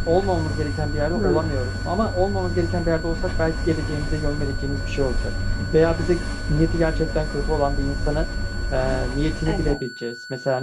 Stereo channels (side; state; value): both; identical; correlation 1.00